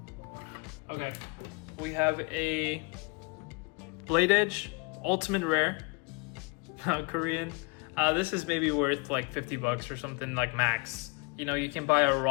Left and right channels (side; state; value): right; quieter; 30.3 dB